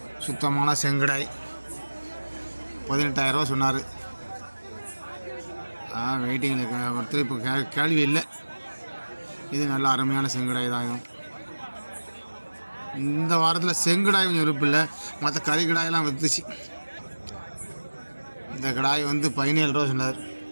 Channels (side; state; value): both; inverted; correlation -1.00